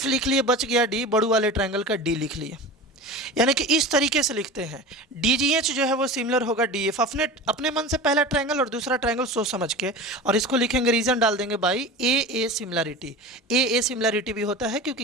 लिख लिए, बच गया D, बड़ू वाले ट्रायंगल का D लिख लिए। यानी कि इस तरीके से लिखते हैं, DGH जो है वो सिमिलर होगा DF, अपने मन से पहला ट्रायंगल और दूसरा ट्रायंगल सोच समझ के, और इसको लिखेंगे, रीजन डाल देंगे by AA similarity. AA similarity भी होता है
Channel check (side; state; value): both; normal; correlation 0.32